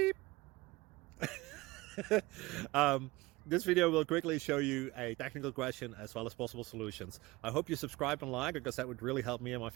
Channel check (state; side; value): quieter; left; 20.8 dB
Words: um, this video will quickly show you a technical question as well as possible solutions. I hope you subscribe and like because that would really help me and my